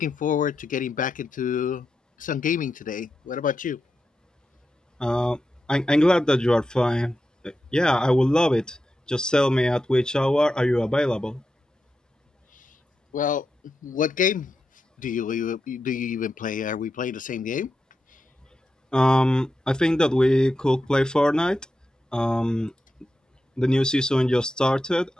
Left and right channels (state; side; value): normal; both; correlation 0.88